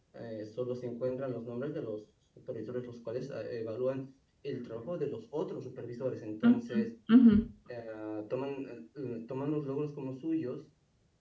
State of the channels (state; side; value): identical; both; correlation 1.00